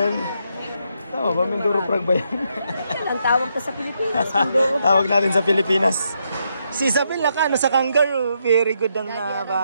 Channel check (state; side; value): inverted; both; correlation -0.79